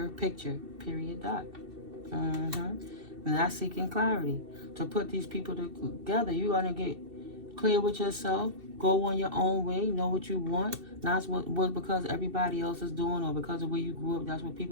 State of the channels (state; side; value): late; left; 2.7 ms